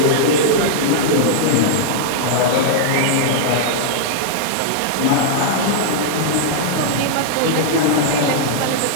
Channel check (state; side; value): different; both; correlation -0.01